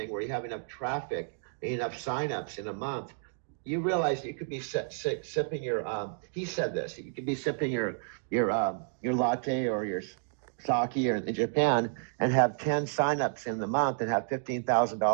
where you have enough traffic and enough signups in a month, you realize you could be sipping your. He said this. You could be sipping your latte or your sake or in Japan and have 10 signups in the month and have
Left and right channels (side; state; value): left; silent; digital silence